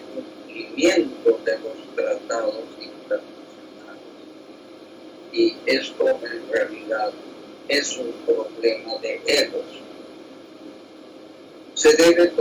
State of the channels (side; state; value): both; identical; correlation 1.00